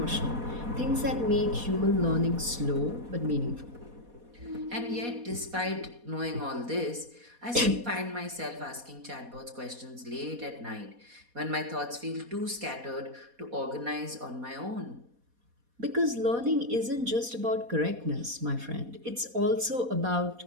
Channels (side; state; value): left; late; 4.2 ms